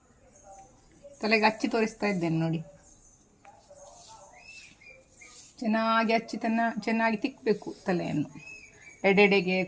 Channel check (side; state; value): both; identical; correlation 1.00